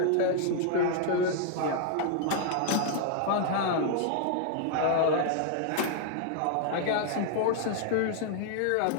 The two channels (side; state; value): both; different; correlation -0.01